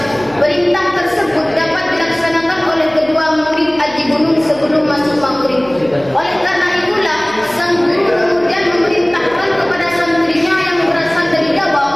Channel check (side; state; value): right; noise; hum, 22 dB below the sound